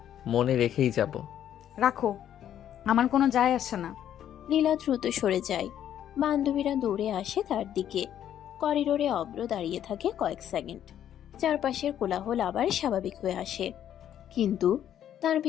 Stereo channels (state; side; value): quieter; right; 10.5 dB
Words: মনে রেখেই যাব। রাখো, আমার কোনো যায় আসে না। নীলা দ্রুত সরে যায়। বান্ধবীরা দৌড়ে আসে তার দিকে। করিডোরে অভ্র দাঁড়িয়ে থাকে কয়েক সেকেন্ড। চারপাশের কোলাহল আবার স্বাভাবিক হয়ে আসে, কিন্তু তার